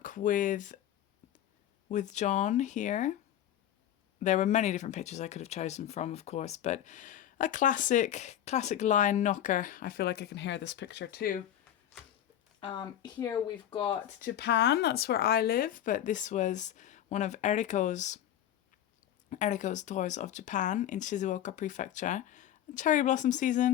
with John here. There were many different pictures I could have chosen from, of course, but a classic lion knocker. I feel like I can hear this picture too. Here we've got Japan, that's where I live, but this was one of Eriko's tours of Japan in Shizuoka Prefecture. Cherry blossom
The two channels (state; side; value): quieter; right; 11.1 dB